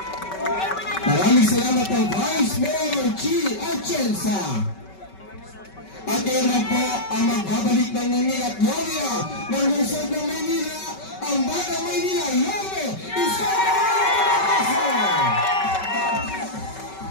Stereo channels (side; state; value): right; late; 5.3 ms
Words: Maraming salamat po, Vice Mayor Chi Atienza. At ngayon po ang magbabalik ng Nini at Gloria ng lungsod ng Maynila, ang Batang Maynila, Yome Isko!